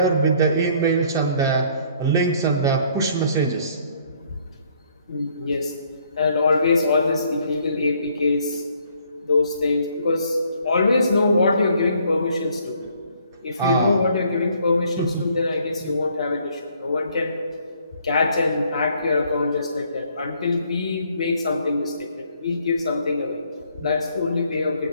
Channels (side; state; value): both; inverted; correlation -0.64